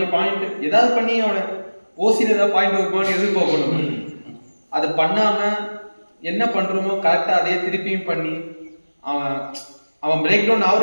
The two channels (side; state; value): both; inverted; correlation -1.00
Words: பாயிண்ட் ஏதாவது பண்ணி அவனை ஓசியில் ஏதாவது பாயிண்ட் வருமானு எதிர்பார்க்கணும். அதை பண்ணாமல் என்ன பண்ணுறோமோ கரெக்டாக அதே திருப்பியும் பண்ணி அவன் பிரேக் டவுன்